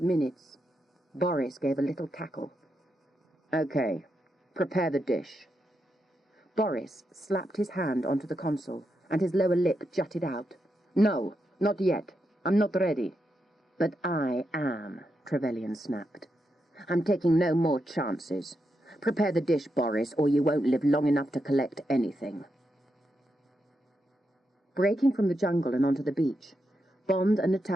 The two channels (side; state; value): both; normal; correlation 0.84